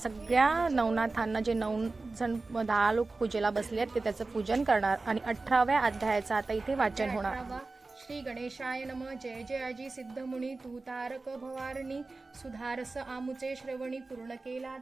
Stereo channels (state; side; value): quieter; left; 3.5 dB